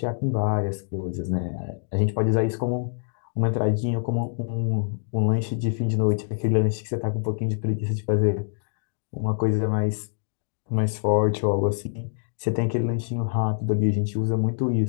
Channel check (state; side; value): silent; right; digital silence